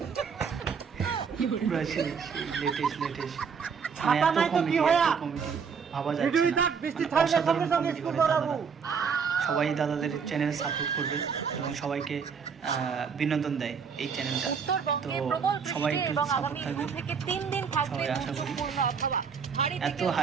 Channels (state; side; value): quieter; left; 6.2 dB